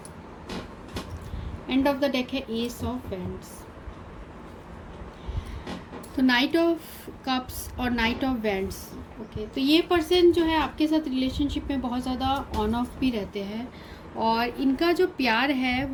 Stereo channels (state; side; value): identical; both; correlation 1.00